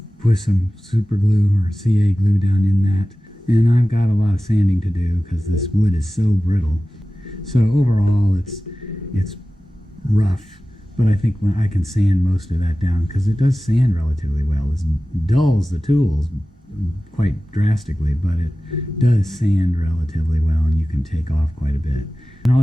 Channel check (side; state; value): both; normal; correlation 0.96